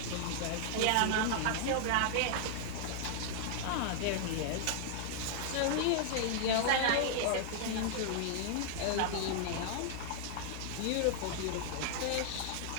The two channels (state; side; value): different; both; correlation -0.01